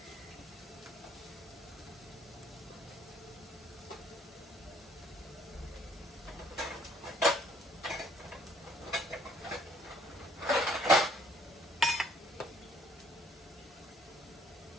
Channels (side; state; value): both; normal; correlation 0.62